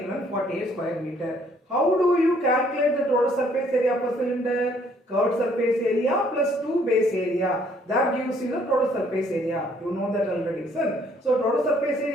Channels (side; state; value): both; normal; correlation 0.64